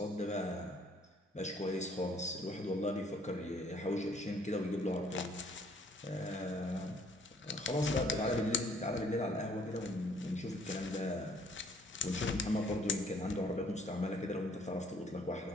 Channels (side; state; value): both; normal; correlation 0.61